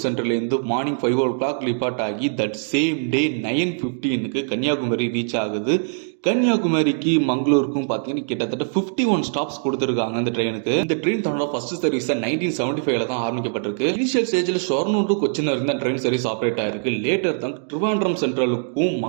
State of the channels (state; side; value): silent; left; digital silence